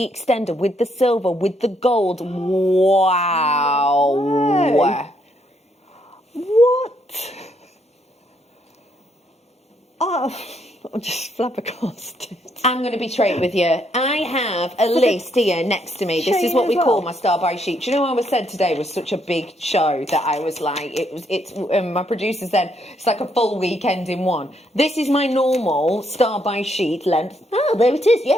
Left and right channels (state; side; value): normal; both; correlation 0.73